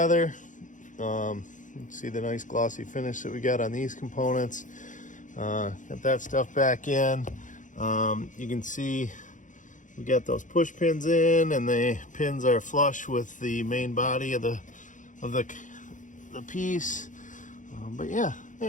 See the nice glossy finish that we got on these components. Got that stuff back in. You can see we got those push pins in, and the pins are flush with the main body of the piece. But yeah,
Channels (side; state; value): right; late; 0.37 ms